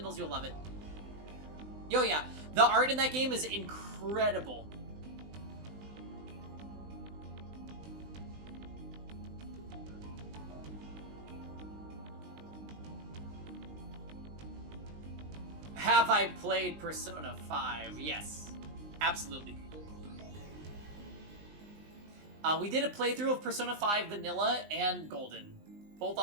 you'll love it. Yo, yeah. The art in that game is incredible. Have I played Persona 5? Yes. Absolutely. We did a playthrough of Persona 5 Vanilla and Golden. Both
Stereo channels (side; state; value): left; late; 20 ms